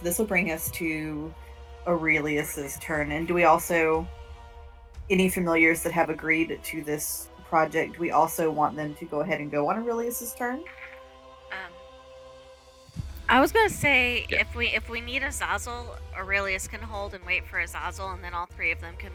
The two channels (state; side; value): identical; both; correlation 1.00